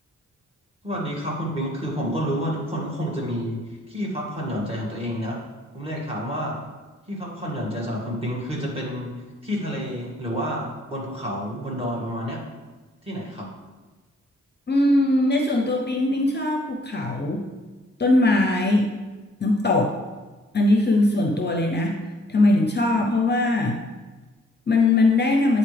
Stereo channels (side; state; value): both; normal; correlation 0.64